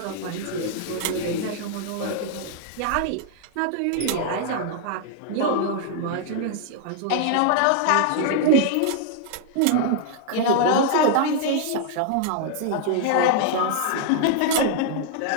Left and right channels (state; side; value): different; both; correlation -0.01